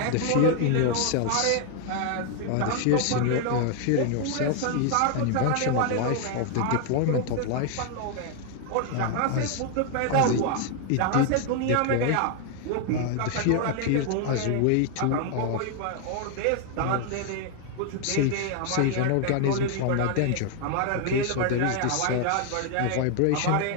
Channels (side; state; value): both; different; correlation 0.00